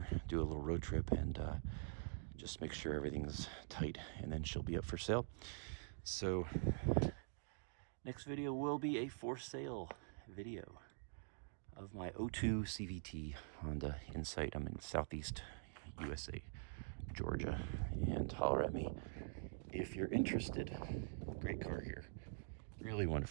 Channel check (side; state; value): left; silent; digital silence